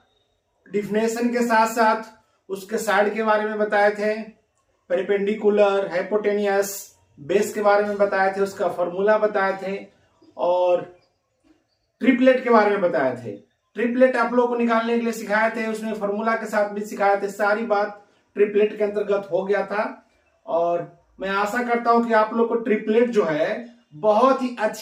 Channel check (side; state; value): both; identical; correlation 1.00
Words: डिफिनेशन के साथ साथ उसके साइड के बारे में बताए थे, पेरिपेंडिकुलर, हाइपोटेनियस, बेस के बारे में बताए थे, उसका फॉर्मूला बताए थे और ट्रिपलेट के बारे में बताए थे। ट्रिपलेट आप लोगों को निकालने के लिए सिखाए थे, उसमें फॉर्मूला के साथ भी सिखाए थे। सारी बात ट्रिपलेट के अंतर्गत हो गया था और मैं आशा करता हूं कि आप लोग को ट्रिपलेट जो है बहुत ही